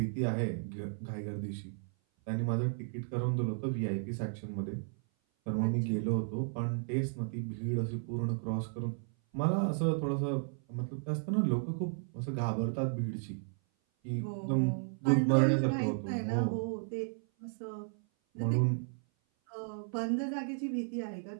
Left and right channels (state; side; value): silent; left; 55 dB below the other